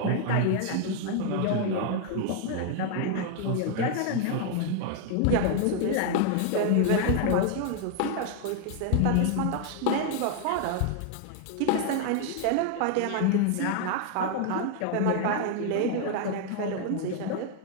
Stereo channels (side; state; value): both; different; correlation 0.00